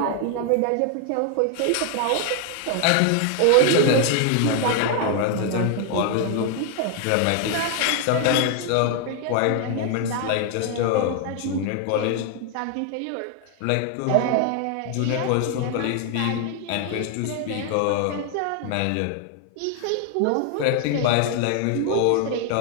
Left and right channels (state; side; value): different; both; correlation 0.00